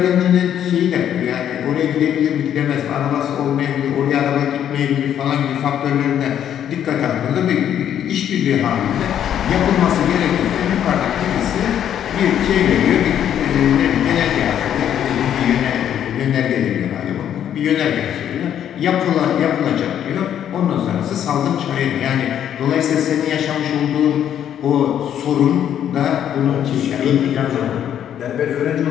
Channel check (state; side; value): quieter; right; 9.9 dB